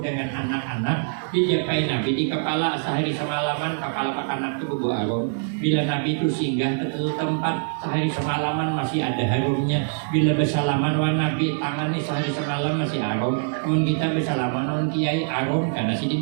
anak-anak, dijapai Nabi di kepala sehari semalaman. Kepala anak itu berbau harum. Bila Nabi itu singgah ke tempat sehari semalaman masih ada harumnya. Bila bersalaman wah Nabi tangannya sehari semalam masih harum. Mun kita bersalaman wah kiai harum karena si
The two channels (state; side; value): silent; left; digital silence